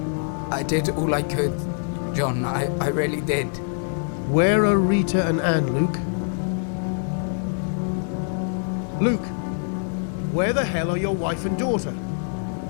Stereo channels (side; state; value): right; silent; 61 dB below the other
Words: I did all I could, John. I really did. Where are Rita and Anne, Luke? Luke, where the hell are your wife and daughter?